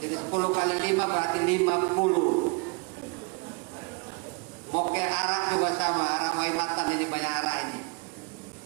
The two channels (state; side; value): quieter; left; 30.1 dB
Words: Jadi 10 kali 5 berarti 50. Moke arak juga sama, arak waimatan ini banyak arak ini.